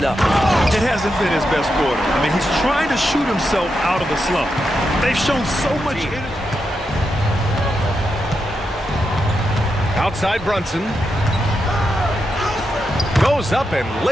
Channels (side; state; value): both; normal; correlation 0.85